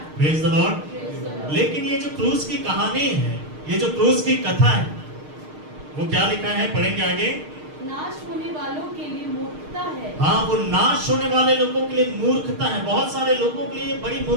Praise the Lord. लेकिन ये जो क्रूस की कहानी है, ये जो क्रूस की कथा है, वो क्या लिखा है, पढ़ेंगे आगे। नाश होने वालों के लिए मूर्खता है। हाँ, वो नाश होने वाले लोगों के लिए मूर्खता है। बहुत सारे लोगों के लिए बड़ी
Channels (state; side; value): late; left; 6.5 ms